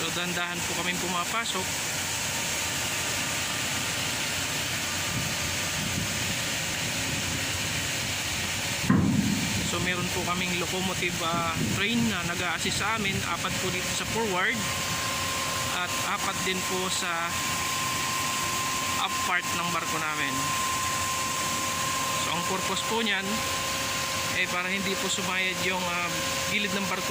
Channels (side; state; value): both; identical; correlation 1.00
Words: So dandahan po kaming pumapasok. So meron po kaming locomotive train na nag-a-assist sa amin. 4 po dito sa forward at 4 din po sa up part ng barko namin. So ang purpose po niyan, para hindi po sumayad yung gilid ng